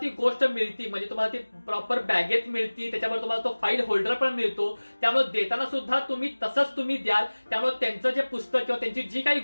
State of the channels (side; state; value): both; inverted; correlation -1.00